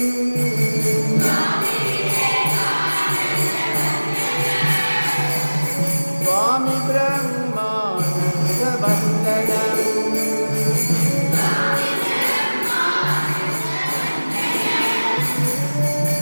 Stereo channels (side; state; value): both; inverted; correlation -1.00